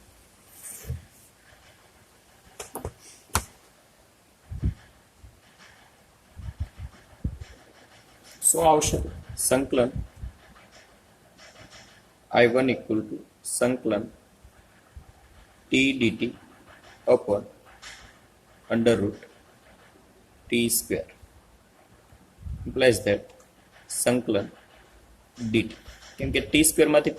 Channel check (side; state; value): both; identical; correlation 1.00